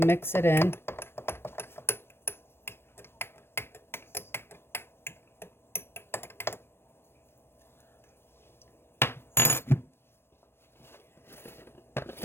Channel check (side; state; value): right; late; 0.12 ms